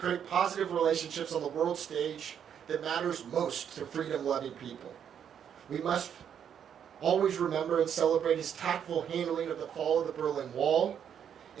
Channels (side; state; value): left; quieter; 8.5 dB